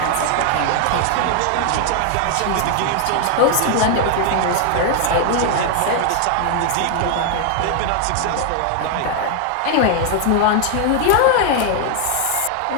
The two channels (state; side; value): different; both; correlation 0.00